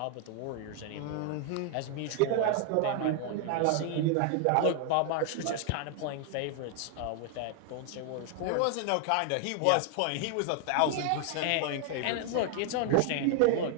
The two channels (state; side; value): different; both; correlation 0.00